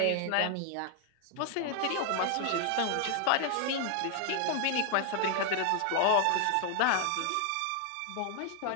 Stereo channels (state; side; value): different; both; correlation 0.00